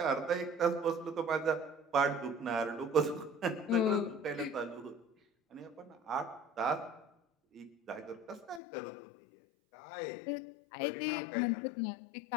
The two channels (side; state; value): right; drops out; at 8.6 s